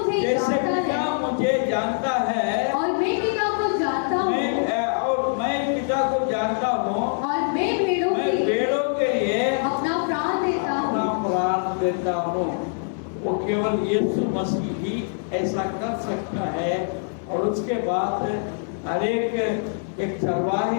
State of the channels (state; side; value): silent; right; digital silence